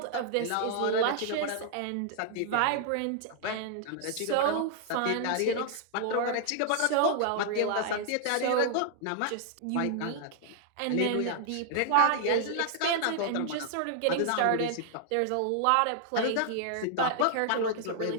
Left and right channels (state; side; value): different; both; correlation -0.01